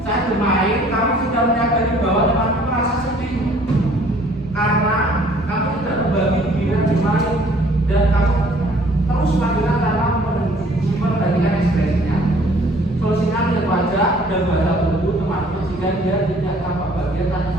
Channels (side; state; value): both; normal; correlation 0.57